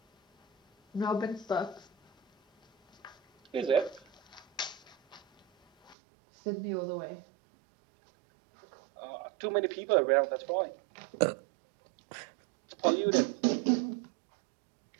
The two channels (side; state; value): left; drops out; at 6.0 s